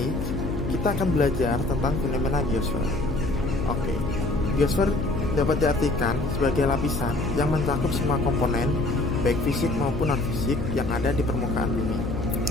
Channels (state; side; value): noise; left; hum, 5 dB below the sound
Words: kita akan belajar tentang fenomena geosfer. Oke, geosfer dapat diartikan sebagai lapisan yang mencakup semua komponen, baik fisik maupun non-fisik yang ada di permukaan bumi.